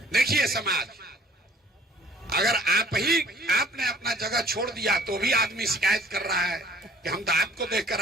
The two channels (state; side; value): normal; both; correlation 0.54